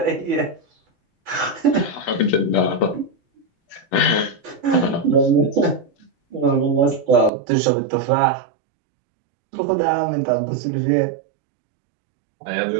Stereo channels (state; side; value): drops out; left; at 7.3 s